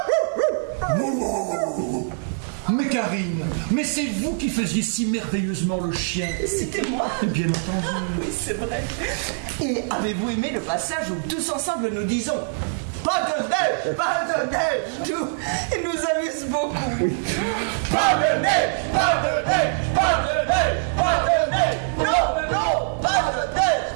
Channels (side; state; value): left; silent; digital silence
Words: Mais Karine, mais c'est vous qui faisiez si merveilleusement le chien. C'était moi. Bien entendu. Oui, c'est vrai. Et avez-vous aimé le passage où tous ensemble nous disons pas de neige, pas de neige, tout. Il nous amuse beaucoup. Pas de neige, pas de neige, pas de neige, pas de neige. Non, non, pas de neige.